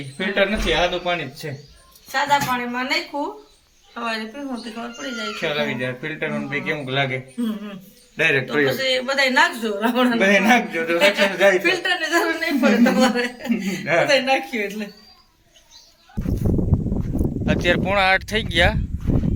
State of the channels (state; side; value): identical; both; correlation 1.00